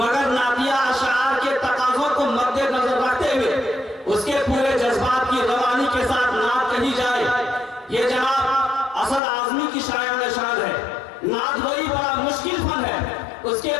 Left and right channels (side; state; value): right; drops out; at 9.2 s